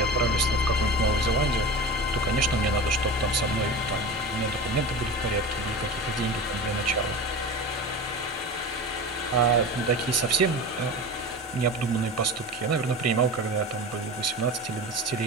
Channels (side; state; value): both; normal; correlation 0.30